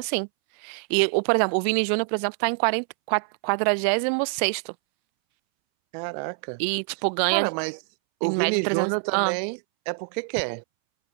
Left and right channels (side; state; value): left; silent; 62 dB below the other